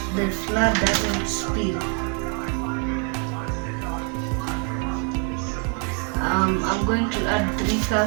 the flour doesn't spill. I'm going to add 3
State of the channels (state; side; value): quieter; left; 38.9 dB